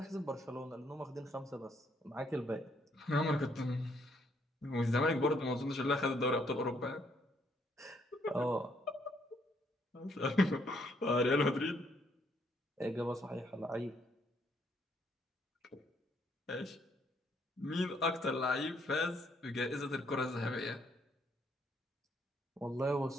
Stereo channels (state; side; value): normal; both; correlation 0.70